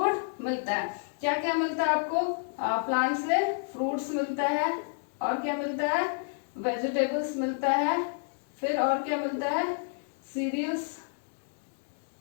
मिलता है। क्या क्या मिलता है आपको, प्लांट से फ्रूट्स मिलता है, और क्या मिलता है, वेजिटेबल्स मिलता है, फिर और क्या मिलता है, सीरियल्स,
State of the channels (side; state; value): right; silent; digital silence